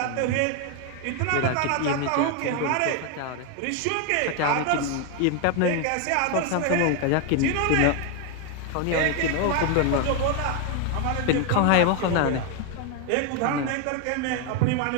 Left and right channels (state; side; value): different; both; correlation 0.01